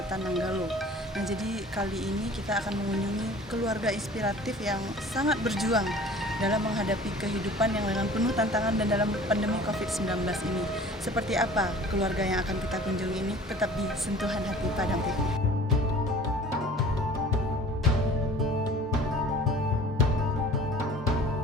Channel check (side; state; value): both; normal; correlation 0.46